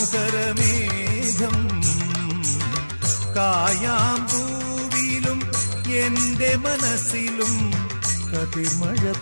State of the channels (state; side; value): inverted; both; correlation -1.00